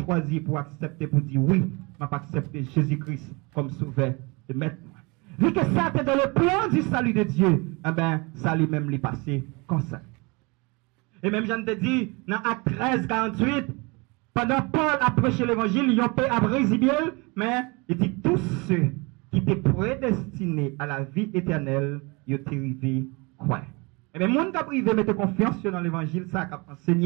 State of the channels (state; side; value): quieter; left; 27.7 dB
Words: pour accepter, pour dire oui. Mais pas accepter Jésus-Christ comme sauveur de maître. Vu que ça était dans le plan du salut de Dieu, eh ben, ça lui-même lui passé comme ça. Et même, j'en te dis, dans Acte 13, 48, pendant Paul a prêché l'évangile, ils ont payé à Brésil, mais il dit tous ceux qui étaient prédestinés à la vie éternelle, ils ont arrivé quoi. Et bien, monde qui a privé mettre confiance dans l'évangile, ça a